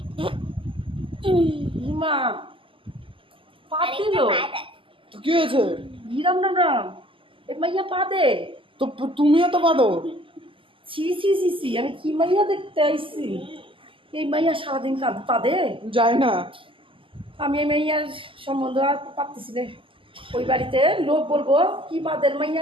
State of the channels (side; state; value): left; late; 0.25 ms